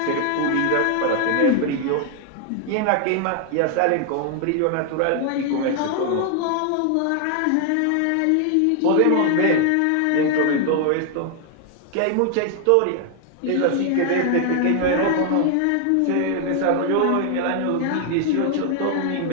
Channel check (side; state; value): both; different; correlation 0.00